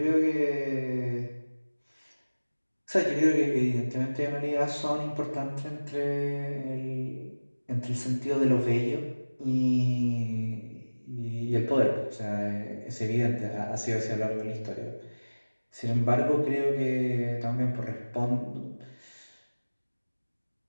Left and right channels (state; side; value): inverted; both; correlation -1.00